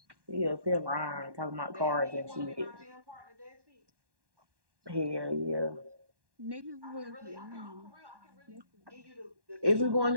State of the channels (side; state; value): left; late; 1.1 ms